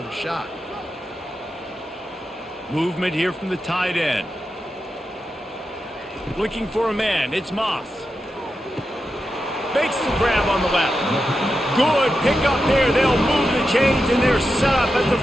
shot. Movement here from the tight end. Looking for a man. It's Moss. Makes the grab on the left. Good pick up there. They'll move the chains, and they're set up at the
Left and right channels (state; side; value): normal; both; correlation 0.89